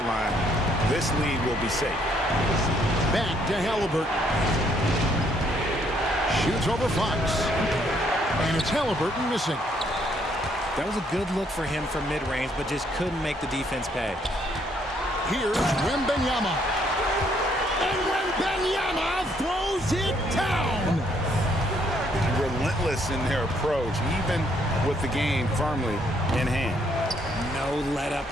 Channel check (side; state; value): both; normal; correlation 0.69